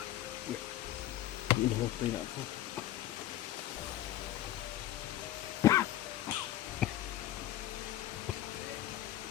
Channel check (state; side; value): quieter; right; 13.3 dB